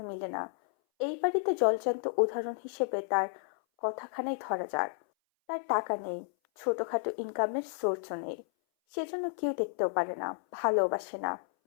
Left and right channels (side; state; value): right; silent; 56 dB below the other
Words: মিলে না। এই বাড়িতে জলজান্ত উদাহরণ হিসেবে তার কথাখানাই ধরা যাক। তার টাকা নেই, ছোটখাটো ইনকামের সোর্সও নেই, সেজন্য কেউ দেখতেও পারে না, ভালোবাসে না।